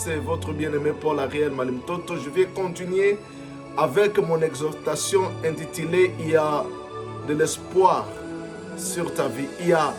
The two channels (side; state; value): both; identical; correlation 1.00